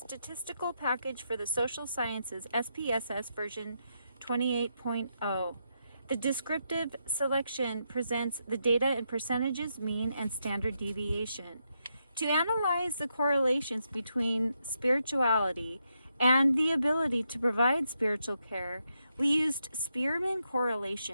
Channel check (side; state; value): both; inverted; correlation -0.82